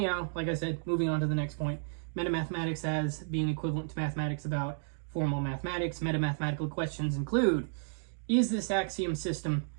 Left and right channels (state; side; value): silent; left; digital silence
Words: like I said, moving on to the next point, metamathematics as being equivalent to mathematics about formal mathematics. Metamathematical questions include, is this axiom system